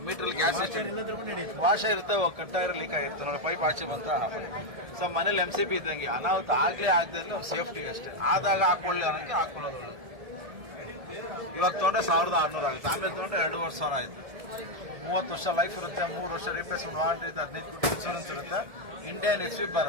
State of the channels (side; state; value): left; late; 1.7 ms